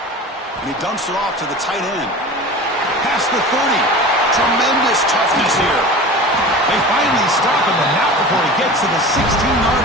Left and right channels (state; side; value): normal; both; correlation 0.35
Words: And he dumps it off to the tight end. Past the 30. Tremendous toughness here. They finally stop him, but not before he gets to the 16-yard